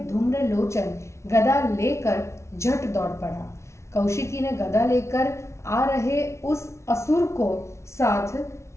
धूम्रलोचन गदा लेकर झट दौड़ पड़ा। कौशिकी ने गदा लेकर आ रहे उस असुर को साथ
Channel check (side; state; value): right; late; 0.13 ms